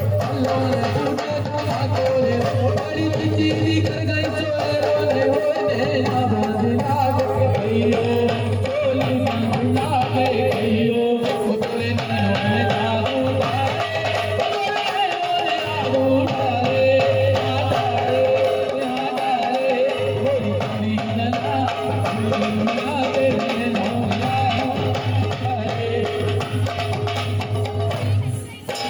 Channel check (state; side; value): identical; both; correlation 1.00